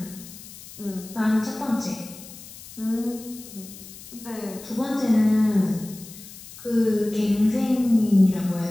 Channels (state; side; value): noise; left; hiss, 16 dB below the sound